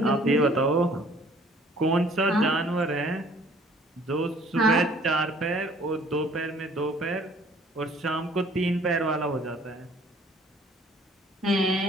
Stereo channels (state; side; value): normal; both; correlation 0.56